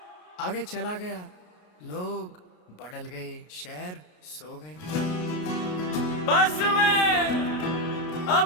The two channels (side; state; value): right; late; 33 ms